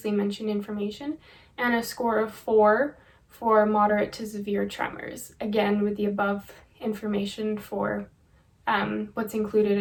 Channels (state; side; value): identical; both; correlation 1.00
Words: mentioned information, and a score of 4 for moderate to severe tremors, again with the above information for what's